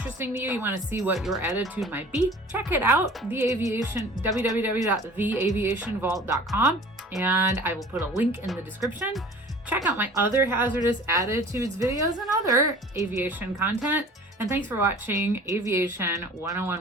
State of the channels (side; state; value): both; normal; correlation 0.45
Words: to you, you want to see what your attitude might be, check it out, www.theaviationvault.com, and I will put a link in the description. Check out my other hazardous attitudes videos and other aviation content. And thanks for watching Aviation